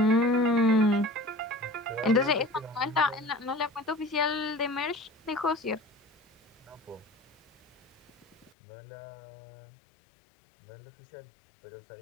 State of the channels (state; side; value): drops out; right; at 8.5 s